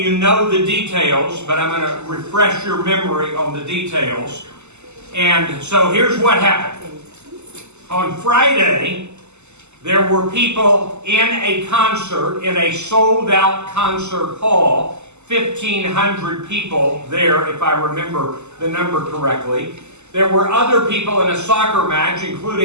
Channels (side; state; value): left; late; 0.83 ms